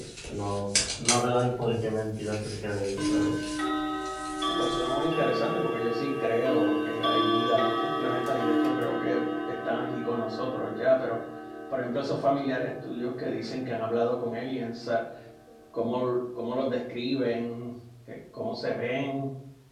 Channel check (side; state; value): both; identical; correlation 1.00